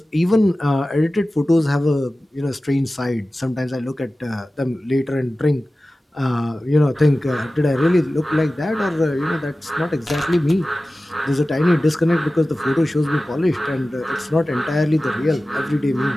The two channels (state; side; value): normal; both; correlation 0.96